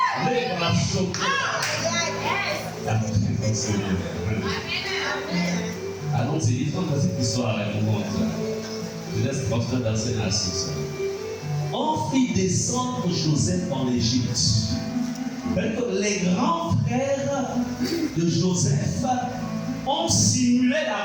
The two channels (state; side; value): identical; both; correlation 1.00